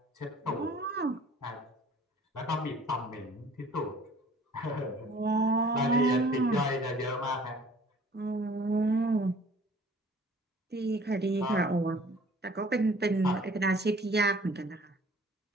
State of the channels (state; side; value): normal; both; correlation 0.53